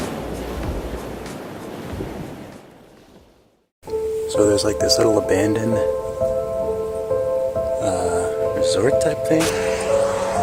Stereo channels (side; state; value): both; identical; correlation 1.00